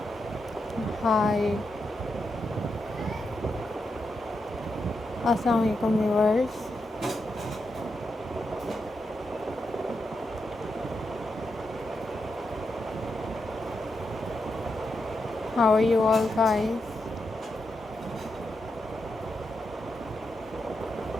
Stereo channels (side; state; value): both; normal; correlation 0.85